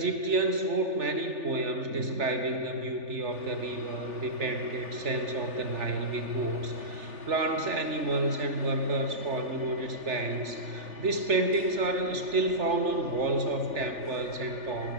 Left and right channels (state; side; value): late; left; 3.4 ms